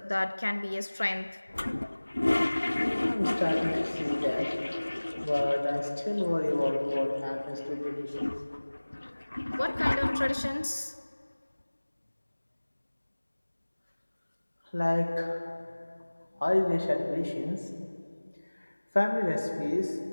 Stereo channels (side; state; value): both; inverted; correlation -1.00